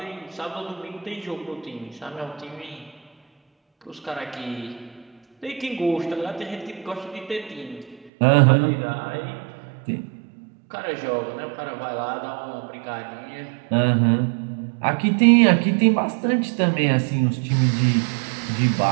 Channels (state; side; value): drops out; left; at 8.1 s